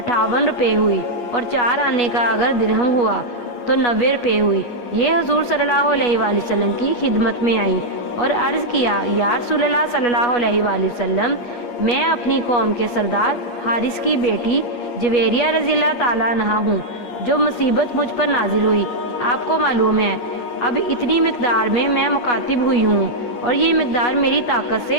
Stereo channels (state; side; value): late; right; 8.3 ms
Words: روپے ہوئی اور 4 آنے کا اگر درہم ہوا تو 90 روپے ہوئی۔ یہ حضور صلی اللہ علیہ وآلہ وسلم کی خدمت میں آئی اور عرض کیا، یا رسول اللہ صلی اللہ علیہ وآلہ وسلم، میں اپنی قوم کے سردار حارث کی بیٹی جویریہ رضی اللہ تعالیٰ عنہ ہوں۔ جو مصیبت مجھ پر نازل ہوئی آپ کو معلوم ہے، اب اتنی مقدار میں مکاتب ہوئی ہوں اور یہ مقدار میری طاقت